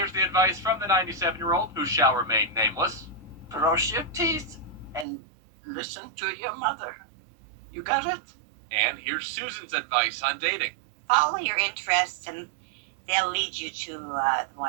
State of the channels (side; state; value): left; drops out; at 5.1 s